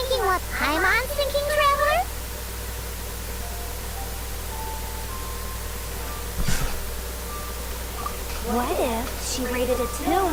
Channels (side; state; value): both; identical; correlation 1.00